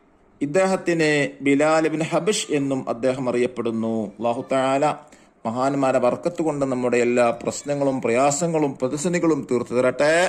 ഇദ്ദേഹത്തിന് ബിലാൽ ഇബ്നു ഹബഷ് എന്നും അദ്ദേഹം അറിയപ്പെടുന്നു. അല്ലാഹു തആല മഹാന്മാരെ ബർക്കത്ത് കൊണ്ട് നമ്മുടെ എല്ലാ പ്രശ്നങ്ങളും പ്രയാസങ്ങളും പ്രതിസന്ധികളും തീർത്തു തരട്ടെ.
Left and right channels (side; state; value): both; identical; correlation 1.00